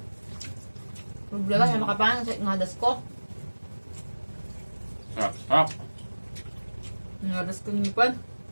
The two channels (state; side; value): inverted; both; correlation -1.00